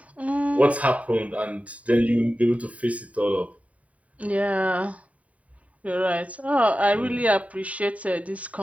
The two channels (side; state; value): left; late; 0.068 ms